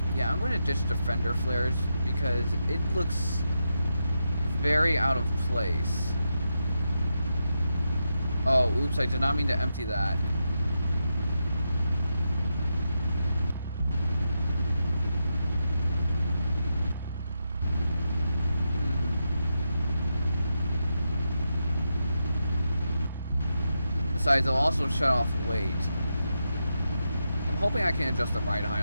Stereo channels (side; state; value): both; inverted; correlation -0.86